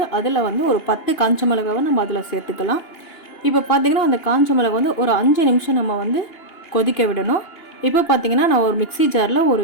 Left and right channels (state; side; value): late; right; 2.8 ms